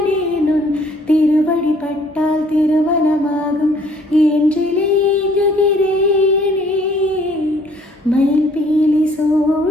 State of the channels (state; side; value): normal; both; correlation 0.60